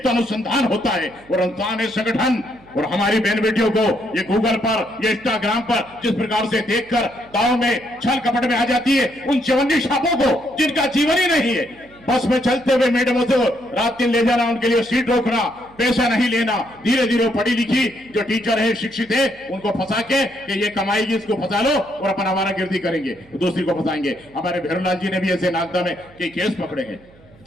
अनुसंधान होता है और अंतर्राष्ट्रीय संगठन और हमारी बहन बेटियों को ये गूगल पर, ये इंस्टाग्राम पर जिस प्रकार से देखकर दाव में छल कपट में आ जाती है, उन चवन्नी छापों को जिनका जीवन ही नहीं है, बस में चलते हुए मैडमों से रात दिन ले जाना, उनके लिए सीट रोकना, पैसा नहीं लेना, धीरे धीरे पढ़ी लिखी जो टीचर है, शिक्षित है, उनको फंसा के कि ये कमाएगी, इसको फंसा लो और अपन हमारा गिरदी करेंगे, दूसरी को फंसाएंगे। हमारे भैरवलाल जी ने भी ऐसे नागदा में कई केस पकड़े हैं।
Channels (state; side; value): noise; right; hum, 26 dB below the sound